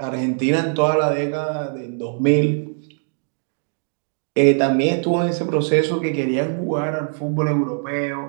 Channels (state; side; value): silent; left; digital silence